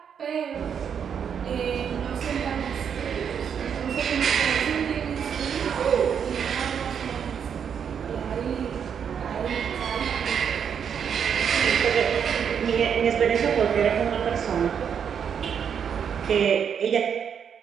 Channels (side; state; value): left; quieter; 7.6 dB